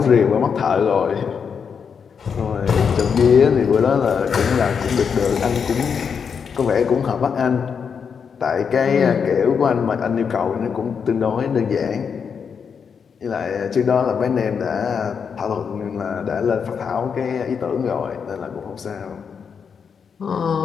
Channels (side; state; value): right; quieter; 6.5 dB